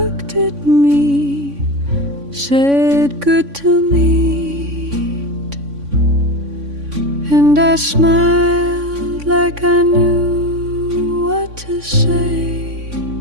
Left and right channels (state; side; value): late; left; 3.5 ms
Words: at me, said good to meet, and I smiled like I knew what to say.